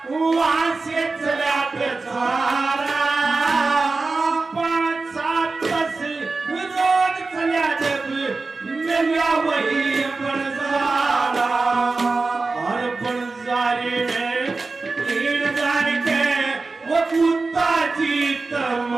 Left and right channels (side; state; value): left; quieter; 3.8 dB